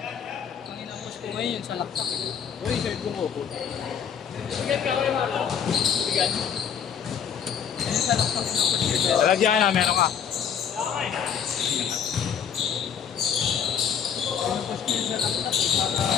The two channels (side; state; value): right; quieter; 7.8 dB